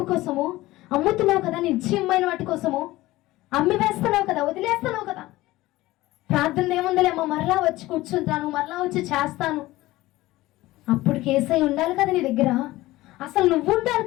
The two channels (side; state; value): right; quieter; 17.9 dB